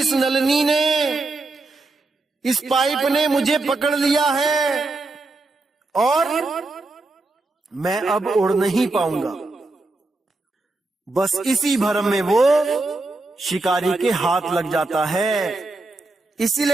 नलनी ने, इस पाइप ने मुझे पकड़ लिया है और मैं अब उड़ नहीं पाऊंगा। बस इसी भ्रम में वो शिकारी के हाथ लग जाता है।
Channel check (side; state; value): left; quieter; 3.1 dB